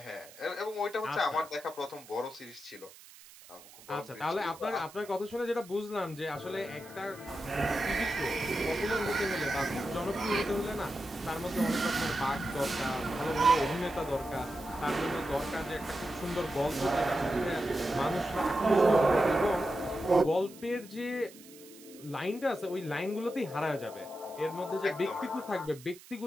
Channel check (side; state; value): right; noise; hiss, 20 dB below the sound